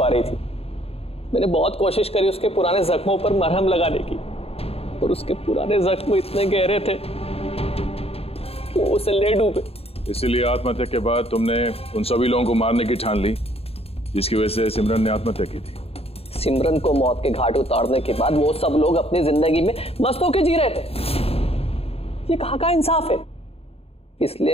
रही थी। मैंने बहुत कोशिश करी उसके पुराने जख्मों पर मरहम लगाने की, और उसके पुराने जख्म इतने गहरे थे कि वो उसे ले डूबे। इसीलिए आत्महत्या के बाद तुमने उन सभी लोगों को मारने की ठान ली जिसकी वजह से सिमरन ने आत्महत्या की थी। सिमरन को मौत के घाट उतारने के बाद वो सब लोग अपनी जिंदगी में मस्त होकर जी रहे थे। ये कहाँ का इंसाफ है?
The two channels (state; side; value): late; right; 0.29 ms